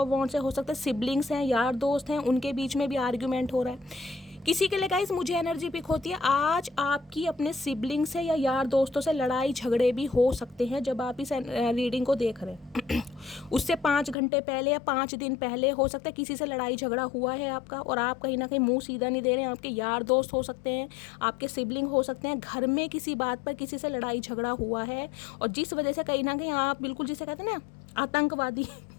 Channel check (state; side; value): drops out; right; at 14.2 s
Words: वॉन्ड्स है, हो सकता है सिबलिंग्स हैं, यार दोस्त हैं, उनके बीच में भी आर्ग्यूमेंट हो रहा है। किसी के लिए गाइस मुझे एनर्जी पिक होती है, आज आपकी अपने सिबलिंग से या यार दोस्तों से लड़ाई झगड़े भी हो सकते हैं जब आप इस रीडिंग को देख रहे हैं उससे 5 घंटे पहले या 5 दिन पहले हो सकता है किसी से लड़ाई झगड़ा हुआ है आपका, और आप कहीं ना कहीं मुंह सीधा नहीं दे रहे हैं। आपके यार दोस्त हो सकते हैं, आपके सिबलिंग हो सकते हैं, घर में किसी बात पर किसी से लड़ाई झगड़ा हुआ है, और जिस वजह से कहीं ना कहीं आप बिल्कुल जिसे कहते हैं ना आतंकवादी